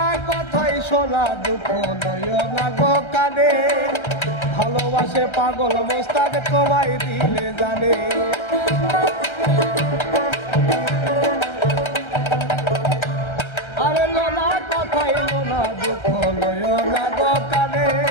কথাই শোনা দুঃখ নয় না গো কানে ভালোবাসে পাগল মোস্তাক তোমায় দিলে জানে আরে লোনা কথাই লোনা দুঃখ নয় না গো কানে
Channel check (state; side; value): late; right; 1.3 ms